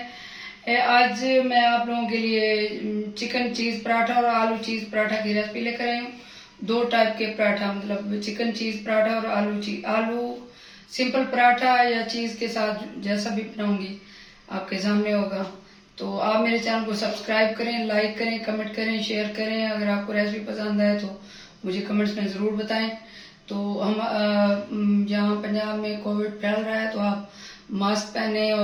आज मैं आप लोगों के लिए चिकन चीज पराठा और आलू चीज पराठा की रेसिपी लेकर आई हूँ। दो टाइप के पराठा, मतलब चिकन चीज पराठा और आलू सिंपल पराठा या चीज के साथ जैसा भी बनाऊंगी आपके सामने होगा। तो आप मेरे चैनल को सब्सक्राइब करें, लाइक करें, कमेंट करें, शेयर करें। अगर आपको रेसिपी पसंद आए तो मुझे कमेंट्स में ज़रूर बताएं। तो हम यहाँ पंजाब में कोविड फैल रहा है, तो आप मास्क पहने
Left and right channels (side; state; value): both; identical; correlation 1.00